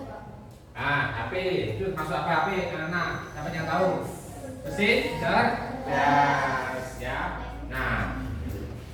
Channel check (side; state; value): both; identical; correlation 1.00